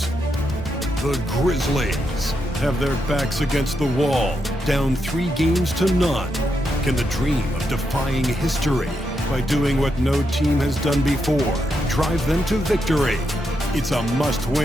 The Grizzlies have their backs against the wall, down 3 games to none. Can the dream of defying history by doing what no team has done before drive them to victory? It's a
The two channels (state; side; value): normal; both; correlation 0.83